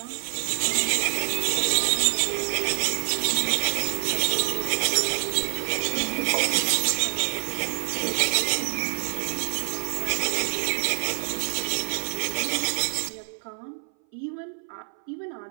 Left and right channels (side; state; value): left; silent; 58 dB below the other